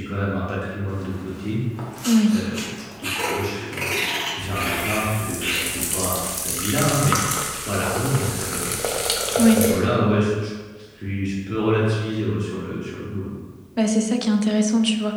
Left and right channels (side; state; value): both; identical; correlation 1.00